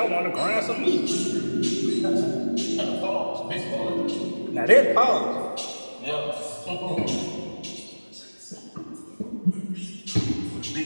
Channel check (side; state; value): both; inverted; correlation -1.00